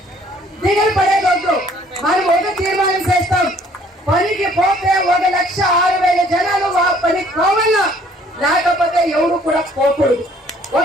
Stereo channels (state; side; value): normal; both; correlation 0.59